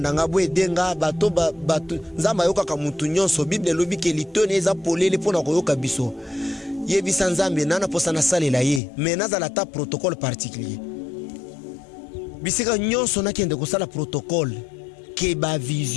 nga bwe denga bato Nzambe ayoka ka mutu nyonso Bible lobi ke litone eza polele pona koyoka biso yebisa Nzambe nana posa na salela ye mais nazala ta protocole particulier bisika nyonso nakende kosala protocole ke ba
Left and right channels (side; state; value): right; drops out; at 8.8 s